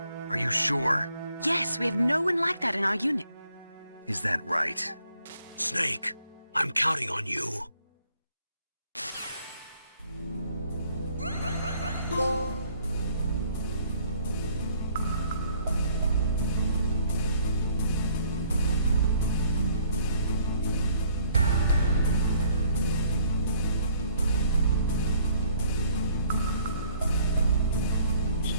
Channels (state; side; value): inverted; both; correlation -0.61